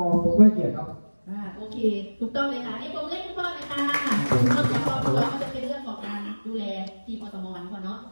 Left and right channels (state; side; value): inverted; both; correlation -1.00